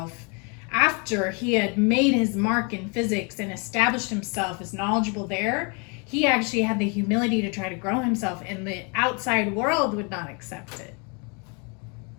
after he had made his mark in physics and established himself as knowledgeable there. He actually had the humility to try to grow himself, and the outside world would not accept it.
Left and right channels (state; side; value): quieter; right; 34.0 dB